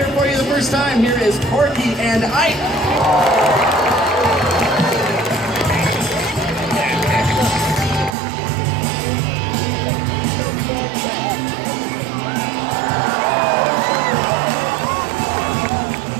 for you the first time, here is Corky and Ike.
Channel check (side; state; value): left; drops out; at 8.2 s